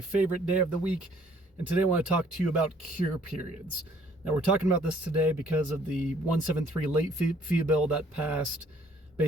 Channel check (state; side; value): normal; both; correlation 0.60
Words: day of the week, and today I want to talk to you about cure periods. Now we're talking about this today because of the 173 late fee bill that passed